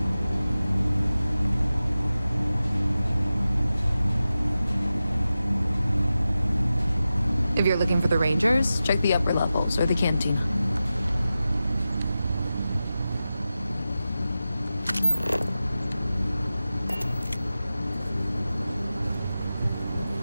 If you're looking for the Rangers, check the upper levels or the canteen.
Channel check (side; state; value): both; inverted; correlation -0.94